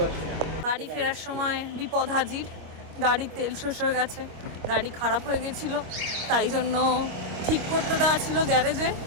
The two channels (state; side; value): late; left; 25 ms